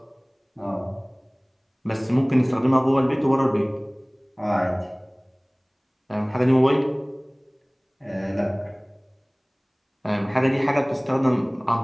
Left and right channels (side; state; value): both; identical; correlation 1.00